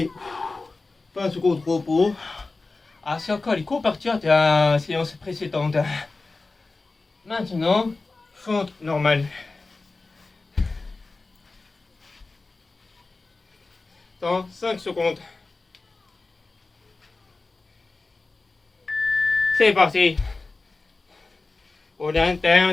20 secondes de repos. Ah, c'est encore les coparties de la séance précédente. Maintenant, fente normale. Dans 5 secondes. C'est parti. Au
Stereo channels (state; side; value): quieter; right; 3.6 dB